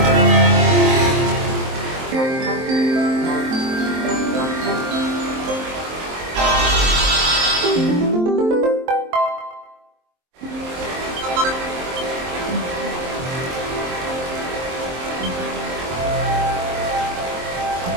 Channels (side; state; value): left; late; 23 ms